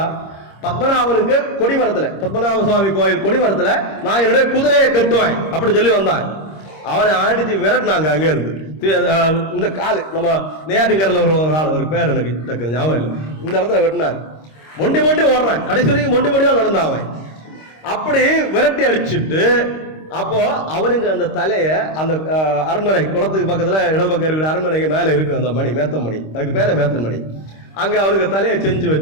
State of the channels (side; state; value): right; late; 26 ms